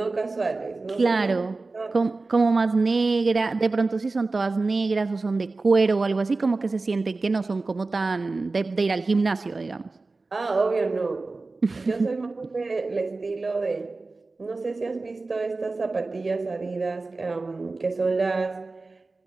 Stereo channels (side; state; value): left; quieter; 3.6 dB